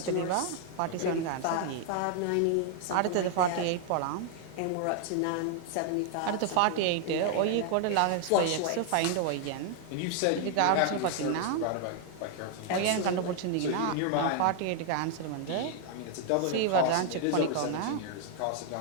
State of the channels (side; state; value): both; different; correlation 0.00